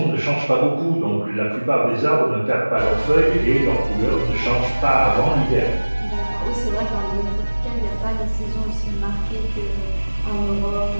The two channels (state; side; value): inverted; both; correlation -1.00